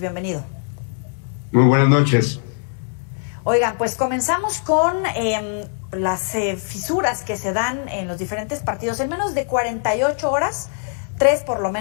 Muy buenas noches. Oigan, pues comenzamos con las fisuras que se dan en los diferentes partidos. En menos de 48 horas, 3 por lo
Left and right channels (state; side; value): silent; right; 62 dB below the other